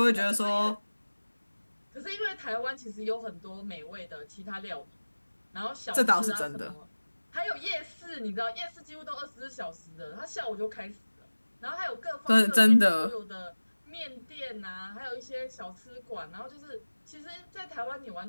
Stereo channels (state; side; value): inverted; both; correlation -1.00